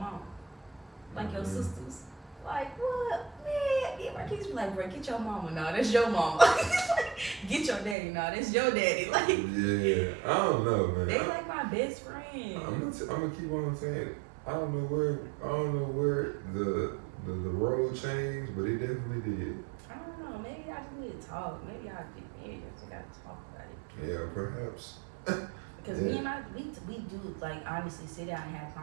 Like your sisters? Like, what? Man, yeah, my kids be like, bro, get your mama. No, that's your mama. Get your daddy. No, that's your daddy. Like, yeah, I don't know, man. They like my best friend. I'm gonna keep on saying it. I don't know where the road changed, but it definitely did. I don't know. Maybe I just need to talk. Maybe I just gotta talk about it. Yeah, perhaps. Because me and we do like honestly sit down and have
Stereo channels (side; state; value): left; drops out; at 8.0 s